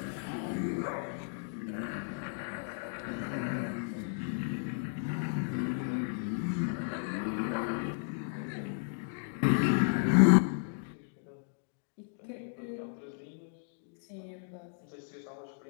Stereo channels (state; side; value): silent; right; digital silence